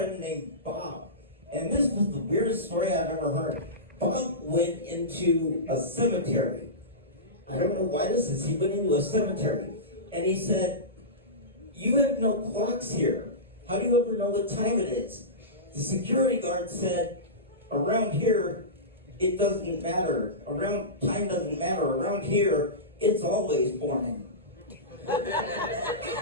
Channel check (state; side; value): normal; both; correlation -0.19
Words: named Bob, and this was the weirdest story I've ever heard. Bob went into a cemetery. I don't know why this is, he went into a cemetery, and he said, you have no clocks here. How do you ever know what time it is? The security guard said, around here, it doesn't matter. Time doesn't matter. Around here, it's always morning.